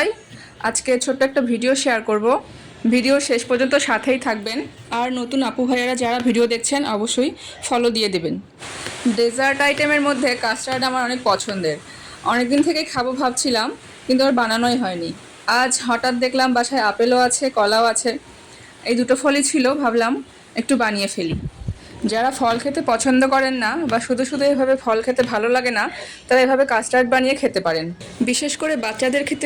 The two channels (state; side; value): identical; both; correlation 1.00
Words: আজকে ছোট্ট একটা ভিডিও শেয়ার করব। ভিডিও শেষ পর্যন্ত সাথেই থাকবেন। আর নতুন আপু ভাইয়ারা যারা ভিডিও দেখছেন অবশ্যই ফলো দিয়ে দেবেন। ডেজার্ট আইটেমের মধ্যে কাস্টার্ড আমার অনেক পছন্দের। অনেক দিন থেকেই খাবো ভাবছিলাম, কিন্তু আর বানানোই হয়নি। আজ হঠাৎ দেখলাম বাসায় আপেলও আছে, কলাও আছে। এই দুটো ফলই ছিল, ভাবলাম একটু বানিয়ে ফেলি। যারা ফল খেতে পছন্দ করেন না বা শুধু শুধু এভাবে ফল খেতে ভালো লাগে না, তারা এভাবে কাস্টার্ড বানিয়ে খেতে পারেন। বিশেষ করে বাচ্চাদের